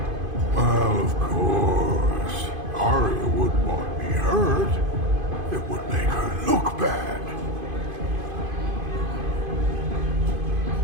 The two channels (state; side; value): late; left; 2.5 ms